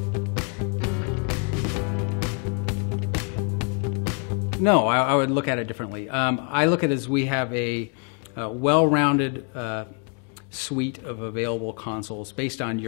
No, I would look at it differently. I look at it as we have a well-rounded suite of available consoles based on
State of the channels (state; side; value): quieter; right; 38.6 dB